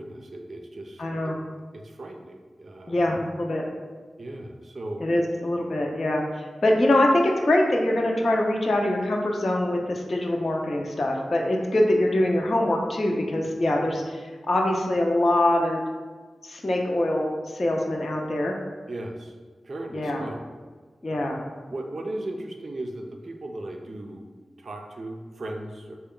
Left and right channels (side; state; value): both; normal; correlation 0.94